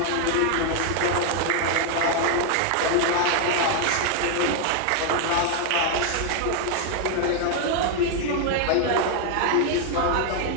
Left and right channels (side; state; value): both; different; correlation 0.00